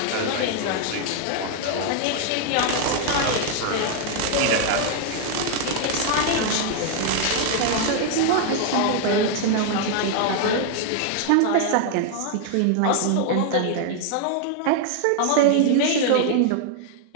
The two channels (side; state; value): both; different; correlation 0.00